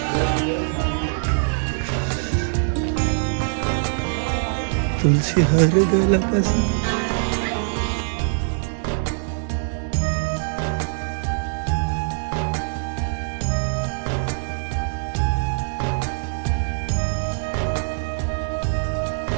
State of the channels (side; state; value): left; silent; digital silence